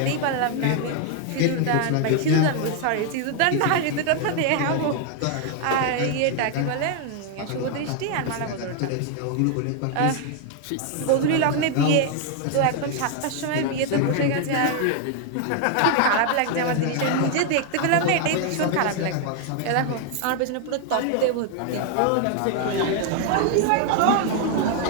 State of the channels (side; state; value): both; different; correlation 0.00